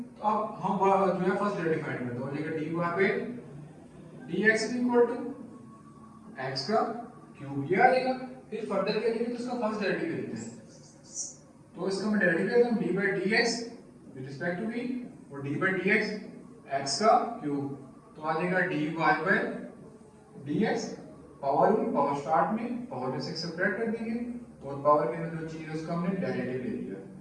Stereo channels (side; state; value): both; identical; correlation 1.00